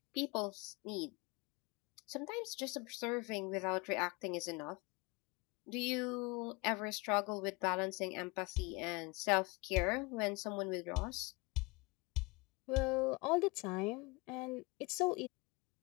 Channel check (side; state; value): right; quieter; 26.6 dB